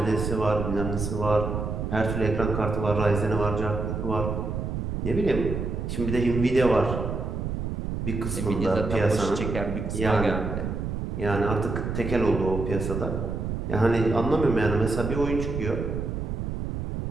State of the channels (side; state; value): right; noise; rumble, 3 dB below the sound